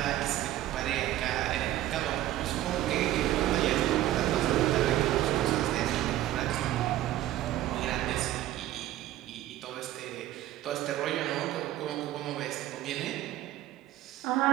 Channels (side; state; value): left; quieter; 13.9 dB